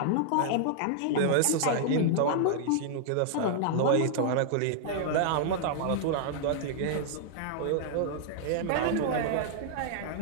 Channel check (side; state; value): both; different; correlation -0.01